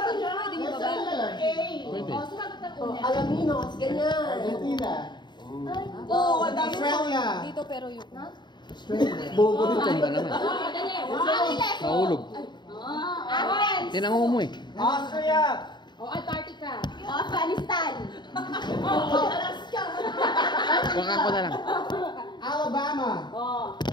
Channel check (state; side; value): late; right; 0.22 ms